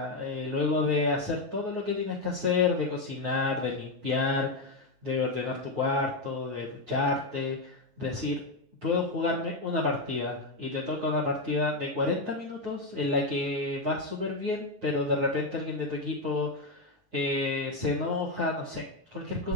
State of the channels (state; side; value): late; left; 9.4 ms